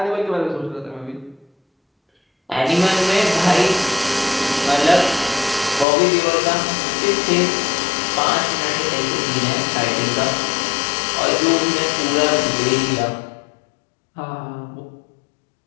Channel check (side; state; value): right; drops out; at 5.9 s